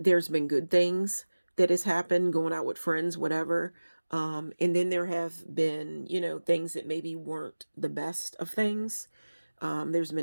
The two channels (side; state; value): both; inverted; correlation -1.00